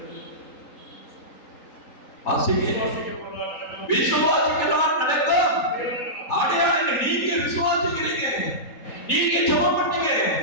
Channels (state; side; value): late; right; 3.8 ms